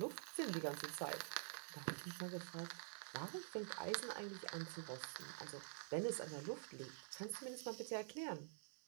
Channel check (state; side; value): silent; left; digital silence